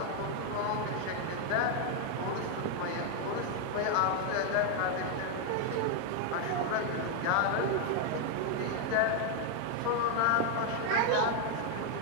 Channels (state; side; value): different; both; correlation 0.01